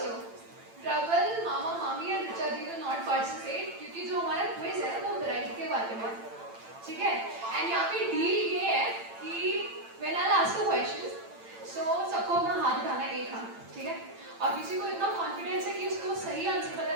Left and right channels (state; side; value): late; left; 8.9 ms